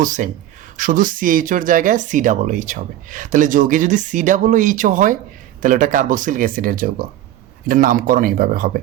সেম, শুধু CHOর জায়গায় COOH হবে। তাহলে যৌগে যদি COOH হয়, তাহলে ওটা কার্বক্সিলিক অ্যাসিডের যৌগ, এটার নামকরণ এইভাবে হবে।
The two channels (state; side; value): quieter; left; 12.9 dB